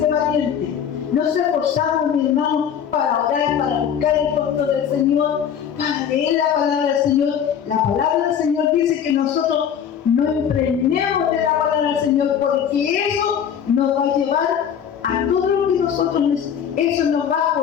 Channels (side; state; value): right; quieter; 8.4 dB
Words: valiente. Nos esforzamos, mi hermano, para orar, para buscar el rostro del Señor, para leer la palabra del Señor. La palabra del Señor dice que nosotros no impregnemos de la palabra del Señor, porque eso nos va a llevar a todo lo que nosotros necesitamos. Eso nos va a